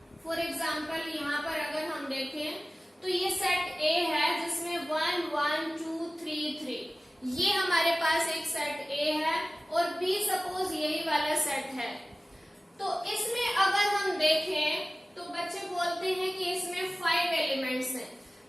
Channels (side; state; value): both; normal; correlation 0.97